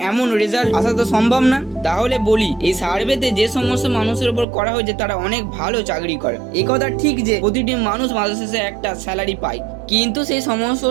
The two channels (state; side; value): drops out; left; at 4.5 s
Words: এমন রেজাল্ট আসা তো সম্ভব না। তাহলে বলি, এই সার্ভেতে যে সমস্ত মানুষের উপর করা হয়েছে তারা অনেক ভালো চাকরি করে। এই কথা ঠিক যে প্রতিটি মানুষ মাসের শেষে একটা স্যালারি পায়, কিন্তু সেই সমস্ত